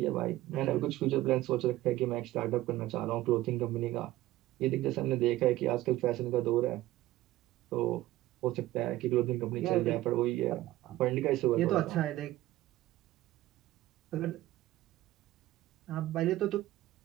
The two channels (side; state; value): left; quieter; 16.0 dB